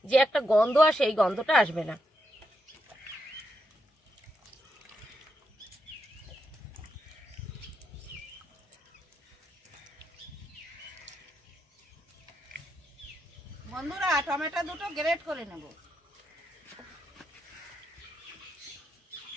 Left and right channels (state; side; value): normal; both; correlation 0.82